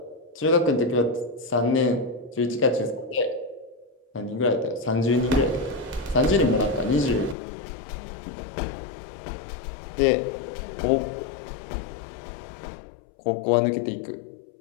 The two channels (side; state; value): right; drops out; at 7.4 s